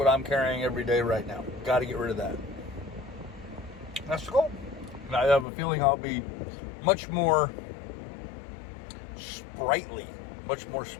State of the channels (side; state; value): right; drops out; at 5.5 s